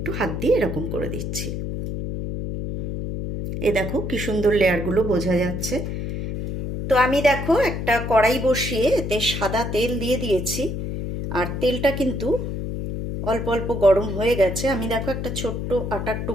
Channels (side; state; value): left; noise; hum, 4 dB below the sound